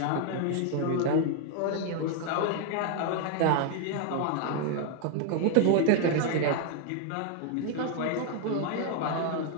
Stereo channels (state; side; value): different; both; correlation 0.00